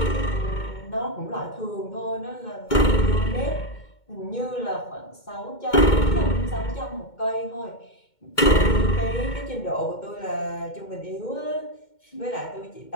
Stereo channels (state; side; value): late; right; 2.2 ms